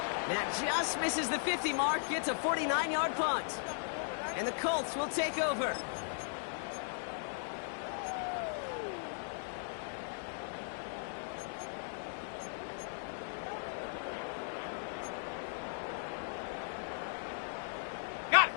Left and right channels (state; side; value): silent; right; digital silence